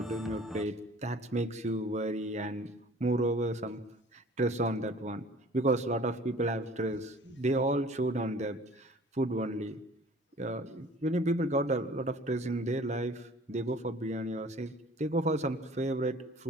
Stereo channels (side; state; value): both; normal; correlation 0.49